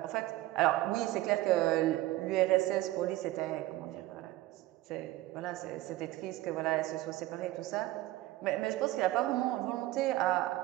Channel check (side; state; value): left; quieter; 16.9 dB